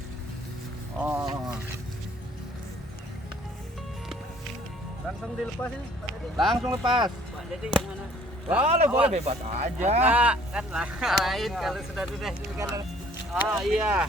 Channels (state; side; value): normal; both; correlation 0.57